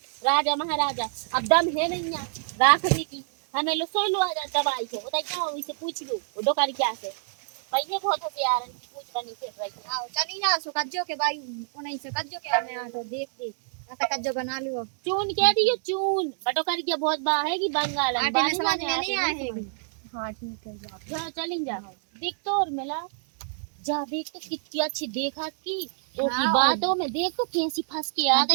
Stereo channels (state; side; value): silent; left; digital silence